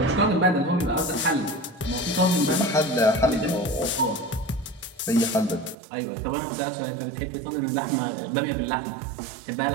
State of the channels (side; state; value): left; drops out; at 5.8 s